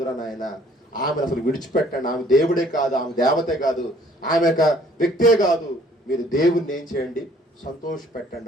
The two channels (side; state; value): both; normal; correlation 0.59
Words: నాయన. ఆమెను అసలు విడిచిపెట్టండి. ఆమె దేవుడే కాదు, ఆమె దేవతే కాదు, ఆమె ఒక వ్యక్తే కాదు. మీరు దేవుణ్ణి ఏం చేయండి? సంతోష